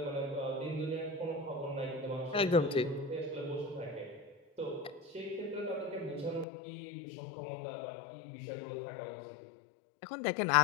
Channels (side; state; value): right; drops out; at 6.5 s